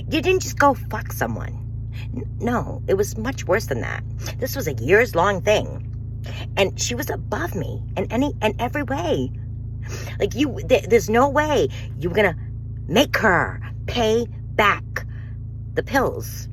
didn't just go fuck someone. No, it was much worse than that. This was a years-long thing. And she was above me in every way. Like, there's no way you were going to make her pay back the pills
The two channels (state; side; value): identical; both; correlation 1.00